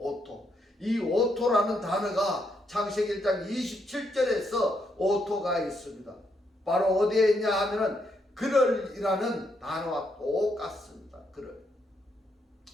이 오토라는 단어가 창세기 1장 27절에서 오토가 있습니다. 바로 어디에 있냐 하면은 그럴이라는 단어와 똑같습니다. 그럴.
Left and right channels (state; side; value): normal; both; correlation 0.78